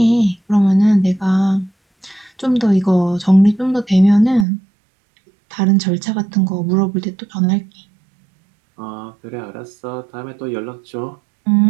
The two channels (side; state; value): left; drops out; at 4.5 s